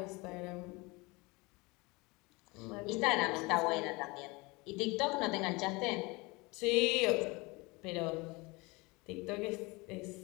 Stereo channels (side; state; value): right; quieter; 25.2 dB